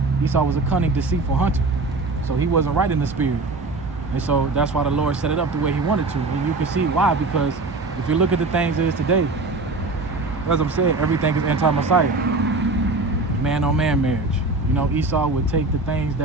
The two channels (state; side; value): quieter; left; 3.4 dB